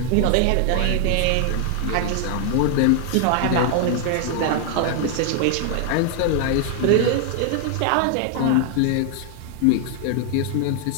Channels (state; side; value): different; both; correlation 0.00